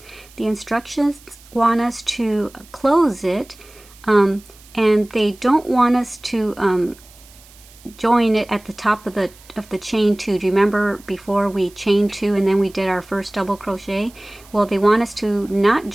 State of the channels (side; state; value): right; noise; hiss, 24 dB below the sound